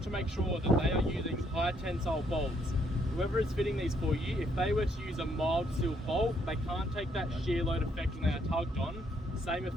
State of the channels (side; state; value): both; normal; correlation 0.71